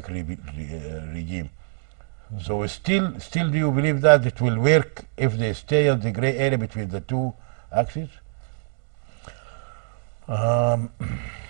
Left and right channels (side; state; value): left; silent; 62 dB below the other